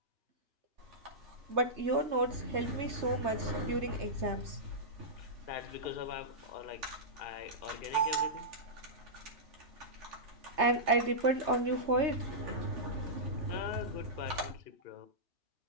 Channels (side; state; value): left; late; 3.3 ms